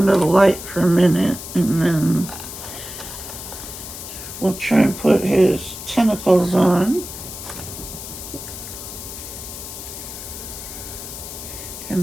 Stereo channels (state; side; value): noise; left; hiss, 10 dB below the sound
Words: the light for a minute, and then we'll try and put his tentacles on.